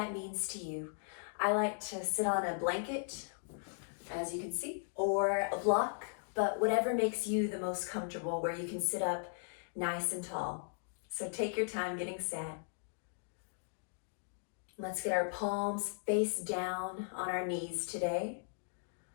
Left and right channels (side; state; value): right; silent; digital silence